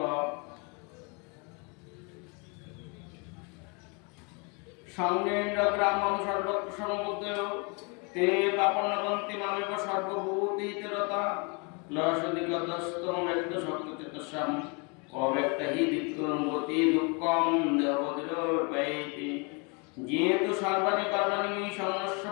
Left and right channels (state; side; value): quieter; right; 32.9 dB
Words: সঙ্গেন্দ্র গ্রামম সর্বত্র সমবুদ্ধ, তে পাপন্নবন্তি মামেব সর্বভূতি হিতরতা। লসদিগতস্তম ব্যক্ত শক্তচেতসাম, অব্যক্ত হি দিক্করঙ্গতি দুঃখম দেহবদিরোপৈতি। যেহেতু সর্বাণি কর্মাণি সংস্য